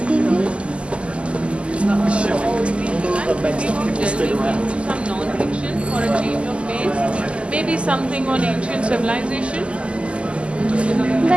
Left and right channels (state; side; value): late; left; 0.055 ms